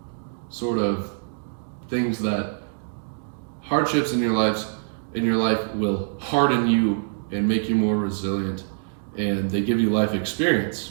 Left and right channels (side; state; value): left; silent; digital silence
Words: sort of things that hardships in your life will harden you and make you more resilient, and they give you life experience.